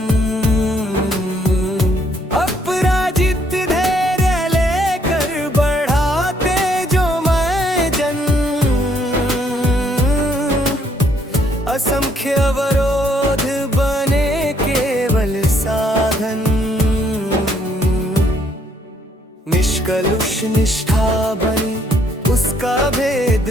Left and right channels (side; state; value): both; normal; correlation 0.68